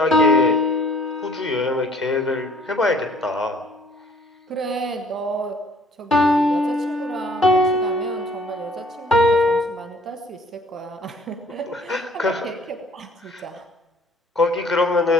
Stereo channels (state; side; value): normal; both; correlation 0.56